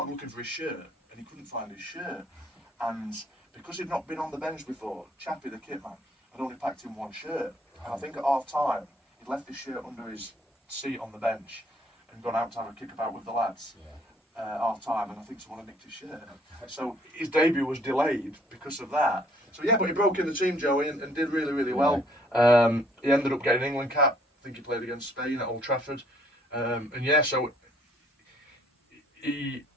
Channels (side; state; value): both; normal; correlation 0.62